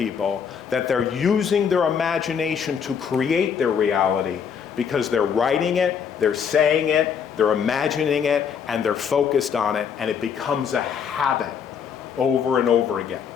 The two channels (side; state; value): right; quieter; 7.2 dB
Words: that they're using their imagination to create their reality because they're writing it, they're saying it, they're imagining it, and they're focused on it, and it becomes a habit over and over again.